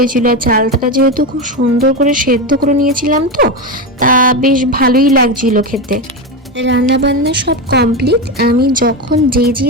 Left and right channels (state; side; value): normal; both; correlation 0.15